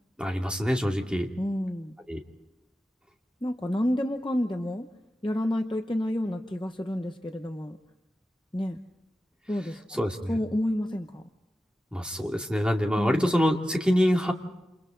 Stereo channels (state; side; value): normal; both; correlation 0.93